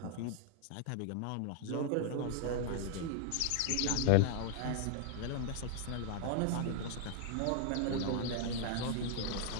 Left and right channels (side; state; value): both; different; correlation 0.00